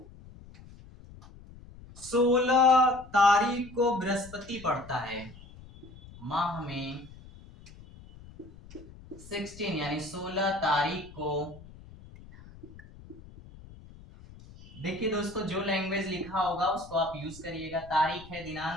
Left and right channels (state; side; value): noise; left; rumble, 19 dB below the sound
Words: 16 तारीख को बृहस्पति पड़ता है। माह में 16 यानी 16 तारीख को, देखिए दोस्तों जो लैंग्वेज लिखा होगा उसको आप यूज करिएगा, तारीख है,